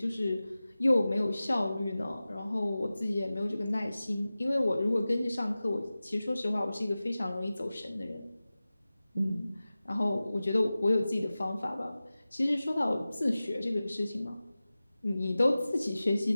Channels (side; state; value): both; inverted; correlation -0.97